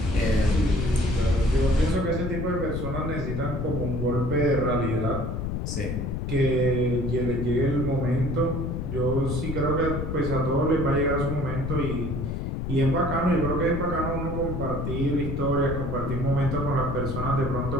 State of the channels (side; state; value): left; noise; rumble, 3 dB below the sound